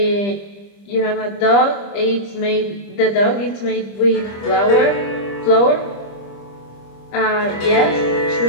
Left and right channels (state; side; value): late; right; 25 ms